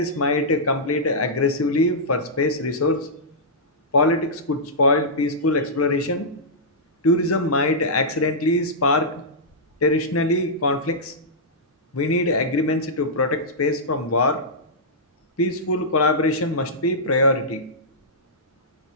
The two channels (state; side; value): normal; both; correlation -0.13